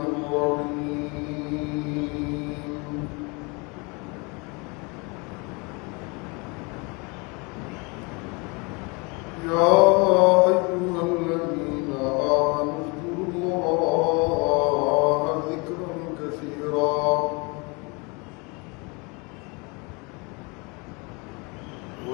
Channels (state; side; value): quieter; right; 29.3 dB